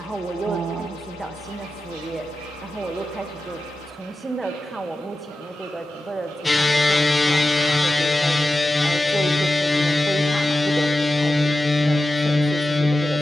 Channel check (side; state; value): both; normal; correlation 0.92